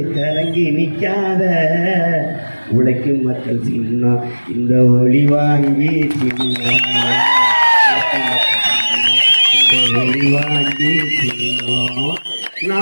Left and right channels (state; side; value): inverted; both; correlation -1.00